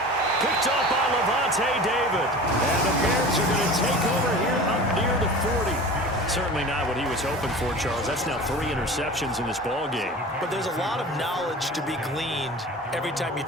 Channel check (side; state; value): both; normal; correlation 0.37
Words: Picked up by Levante David. And the Bears are going to take over here up near the 40. Certainly not what he was hoping for, Charles. That's now 3 interceptions in this ball game. But there's a lot of knowledge to be gleaned every time you